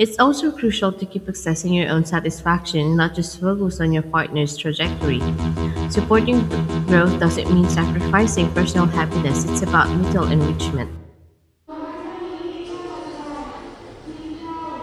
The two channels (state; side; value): identical; both; correlation 1.00